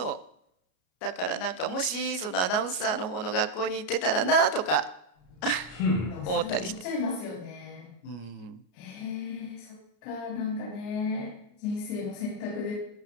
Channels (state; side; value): late; right; 33 ms